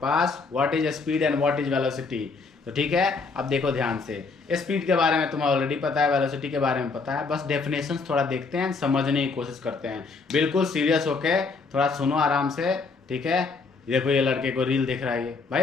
what is speed and what is velocity. तो ठीक है, अब देखो ध्यान से, स्पीड के बारे में तुम्हें ऑलरेडी पता है, वेलोसिटी के बारे में पता है, बस डेफिनेशंस थोड़ा देखते हैं, समझने की कोशिश करते हैं। बिल्कुल सीरियस होके थोड़ा सुनो आराम से, ठीक है। देखो ये लड़के को रील देख रहा है, ये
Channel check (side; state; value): right; quieter; 4.3 dB